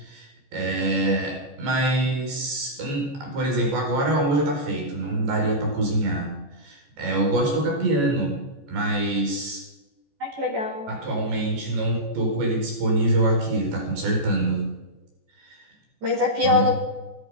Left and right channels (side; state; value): left; late; 14 ms